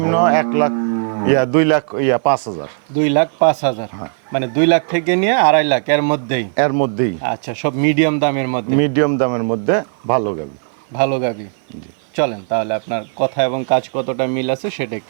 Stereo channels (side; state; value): left; silent; 57 dB below the other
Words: 2,05,000। 2,05,000, মানে 2 লাখ থেকে নিয়ে 2.5 লাখ এর মধ্যেই? এর মধ্যেই। আচ্ছা, সব মিডিয়াম দামের মধ্যে? মিডিয়াম দামের মধ্যে ভালো গাবি। ভালো গাভী। চলেন তাহলে আপনার কথা এবং কাজ কতটা মিল আছে সেটা